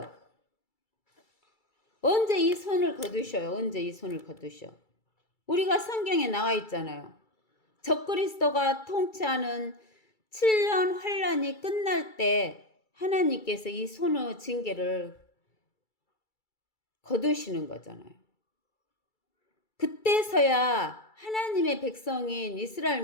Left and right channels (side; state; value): right; late; 2.3 ms